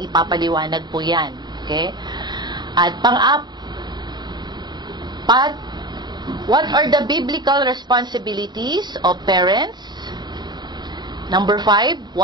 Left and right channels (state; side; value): late; left; 0.21 ms